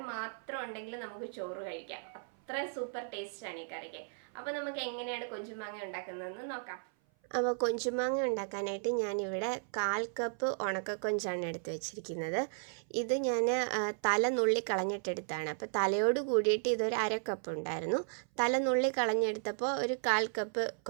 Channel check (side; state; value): left; silent; 55 dB below the other